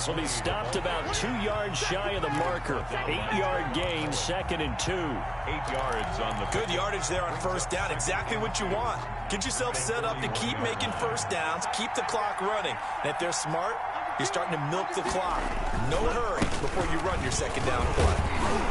will be stopped about 2 yards shy of the marker. 8-yard gain, 2nd and 2. 8 yards on the good yardage there on first down. Exactly what you want. Get yourself set up to keep making first downs, keep the clock running. And if they're smart, you're starting to milk the clock. No hurry before you run your second down play.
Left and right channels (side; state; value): both; identical; correlation 1.00